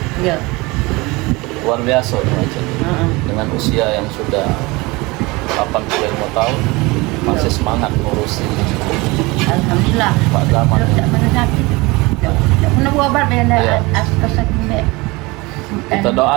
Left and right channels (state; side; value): quieter; left; 23.7 dB